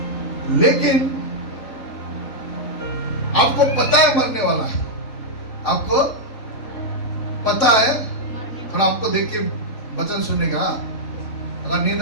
लेकिन आपको पता है मरने वाला है, आपको पता है। थोड़ा आपको देख के वचन सुनेगा। अगर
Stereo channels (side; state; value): right; late; 4.0 ms